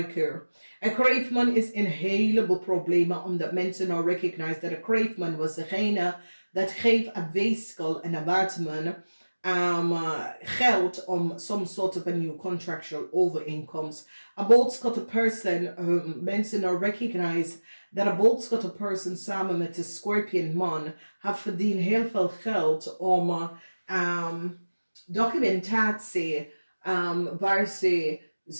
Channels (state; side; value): inverted; both; correlation -1.00